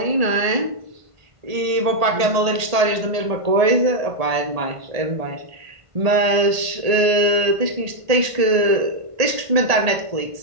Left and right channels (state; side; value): late; left; 1.8 ms